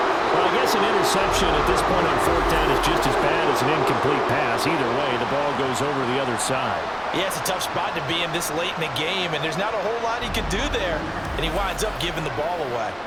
Well, I guess an interception at this point on 4th down is just as bad as an incomplete pass. Either way, the ball goes over the other side. Yeah, it's a tough spot to be in this late in the game, and there's not a whole lot he can do there. And he winds up giving the ball away.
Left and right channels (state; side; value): identical; both; correlation 1.00